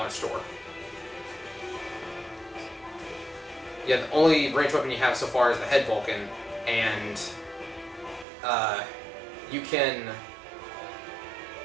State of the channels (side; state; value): left; drops out; at 8.2 s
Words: store. Yeah, the only ranged weapon you have so far is the Head Vulcan, and you